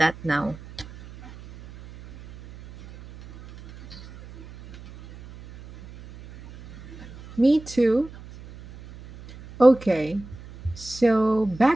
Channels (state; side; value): noise; right; hum, 19 dB below the sound